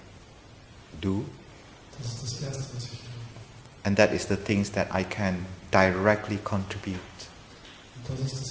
do. Das ist das Erste, was ich tue. And that is the things that I can directly contribute. Und das ist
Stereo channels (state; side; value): identical; both; correlation 1.00